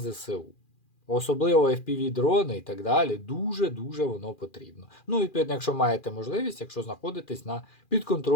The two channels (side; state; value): right; late; 2.4 ms